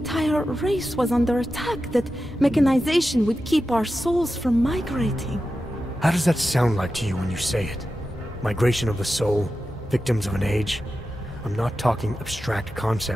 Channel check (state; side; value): normal; both; correlation 0.92